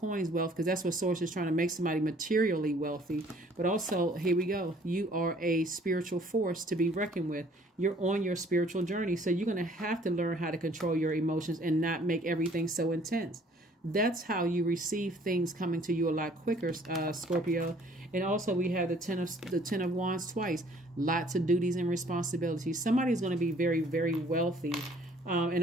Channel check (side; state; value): both; normal; correlation 0.58